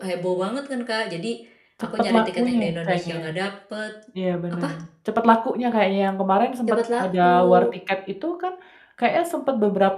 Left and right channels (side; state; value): both; identical; correlation 1.00